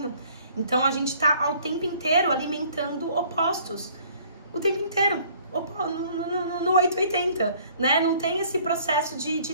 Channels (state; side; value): inverted; both; correlation -0.56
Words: Então a gente tá ao tempo inteiro alimentando opostos. O tempo inteiro. No 880, né? Não tem esse processo de